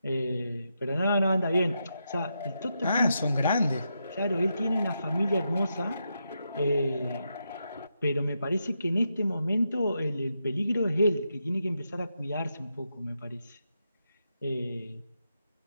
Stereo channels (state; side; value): inverted; both; correlation -0.84